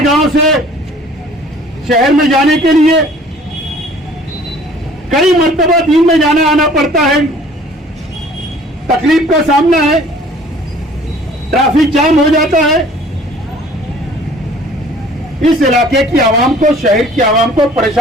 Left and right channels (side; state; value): both; normal; correlation 0.52